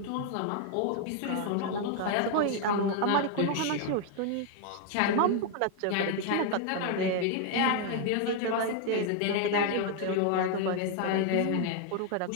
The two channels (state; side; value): different; both; correlation 0.00